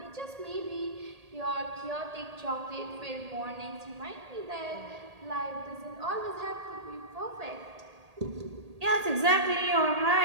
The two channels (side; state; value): left; late; 1.8 ms